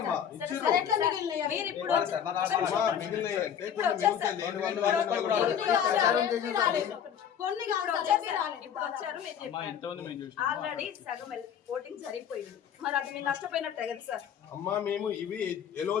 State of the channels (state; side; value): quieter; right; 8.7 dB